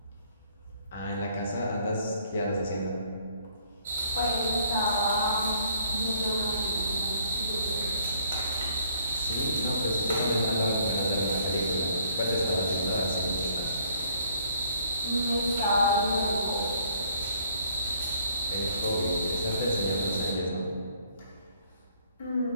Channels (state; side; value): inverted; both; correlation -0.62